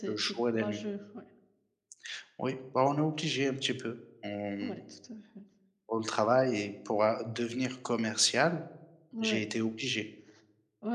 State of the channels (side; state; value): both; identical; correlation 1.00